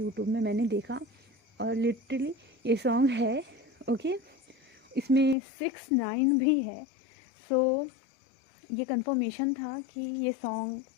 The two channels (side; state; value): right; drops out; at 5.4 s